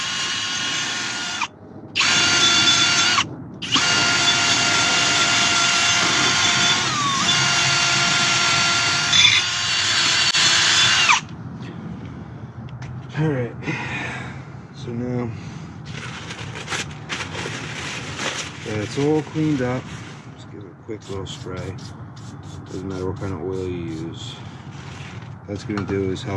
Alright, so now that's all cleaned up. Just give it a quick little spray. Doesn't matter what kind of oil you use. What that's going to do is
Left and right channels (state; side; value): identical; both; correlation 1.00